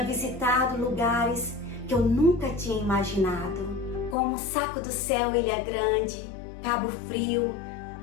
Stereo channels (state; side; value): drops out; right; at 4.2 s